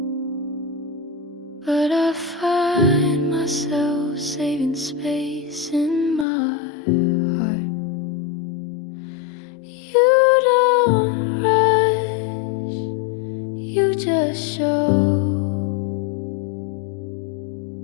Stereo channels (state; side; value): drops out; right; at 6.2 s